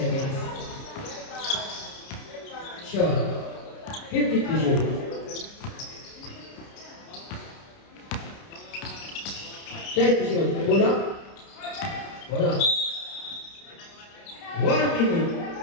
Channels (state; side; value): late; right; 30 ms